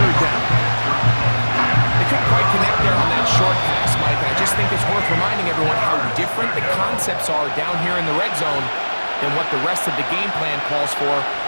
down. They couldn't quite connect there on that short pass, Mike, and I just think it's worth reminding everyone how different the concepts are down here in the red zone than what the rest of the game plan calls for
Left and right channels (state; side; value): inverted; both; correlation -1.00